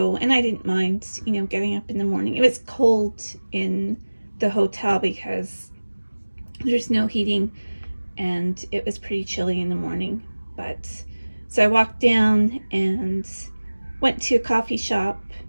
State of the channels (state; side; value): inverted; both; correlation -1.00